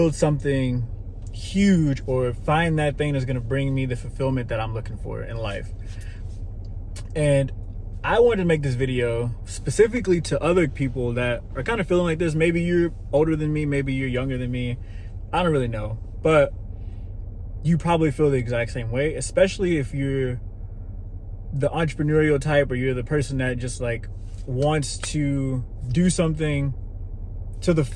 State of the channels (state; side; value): identical; both; correlation 1.00